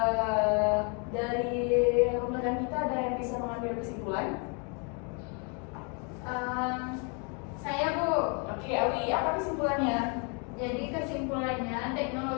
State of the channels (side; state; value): right; quieter; 35.8 dB